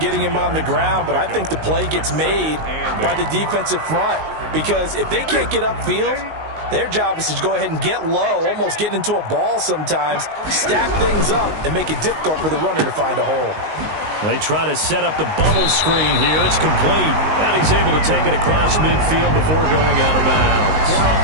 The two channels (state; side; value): late; left; 19 ms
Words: him on the ground, but I think the play gets made by the defensive front because if they can't get upfield, their job is to go ahead and get low, almost get into a ball sometimes, stack things up, and make it difficult for the runner to find a hole. They try to set up the bubble screen here. It's complete. And he's able to take it across midfield before going out of bounds.